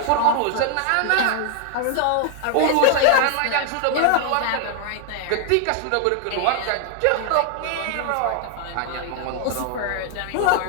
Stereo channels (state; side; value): different; both; correlation 0.00